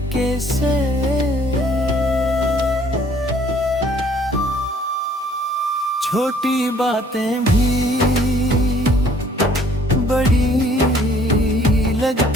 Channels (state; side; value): normal; both; correlation 0.59